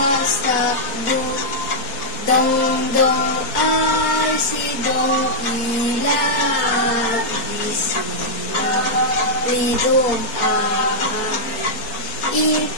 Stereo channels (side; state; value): right; late; 4.4 ms